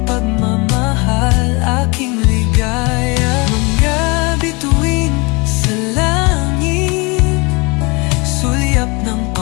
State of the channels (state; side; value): quieter; right; 27.8 dB